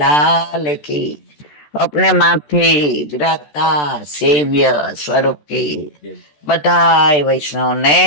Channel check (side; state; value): right; late; 14 ms